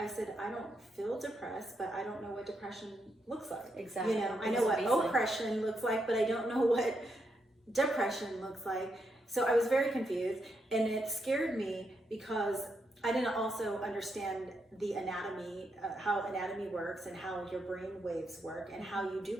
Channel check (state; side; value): normal; both; correlation 0.81